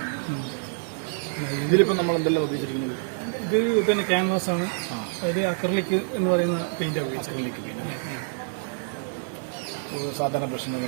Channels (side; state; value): left; silent; 61 dB below the other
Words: ഇതിലിപ്പോൾ നമ്മൾ എന്തെല്ലാം ഉപയോഗിച്ചിരിക്കുന്നത്? ഇത് പിന്നെ ക്യാൻവാസ് ആണ്. അതിൽ അക്രലിക് എന്ന് പറയുന്ന പെയിന്റ് ഉപയോഗിച്ചത്.